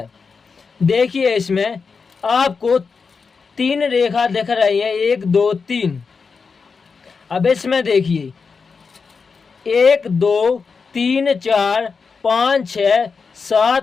देखिए इसमें आपको 3 रेखा दिख रही है, 1 2 3। अब इसमें देखिए 1 2 3 4 5 6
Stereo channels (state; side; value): quieter; right; 5.1 dB